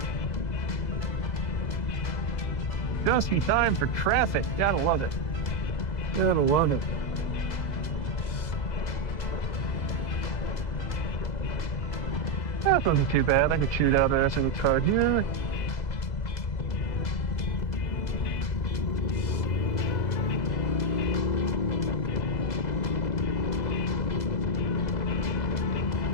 Just in time for traffic. Gotta love it. Gotta love it. That wasn't too bad. I could shoot out there in the car here.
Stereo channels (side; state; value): right; late; 2.0 ms